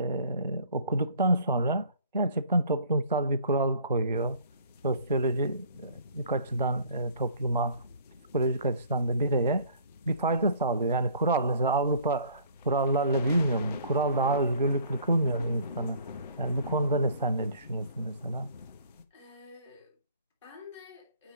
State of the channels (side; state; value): both; inverted; correlation -0.54